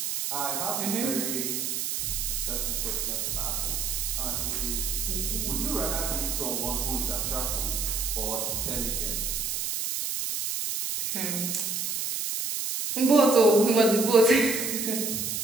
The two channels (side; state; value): right; noise; hiss, 1 dB below the sound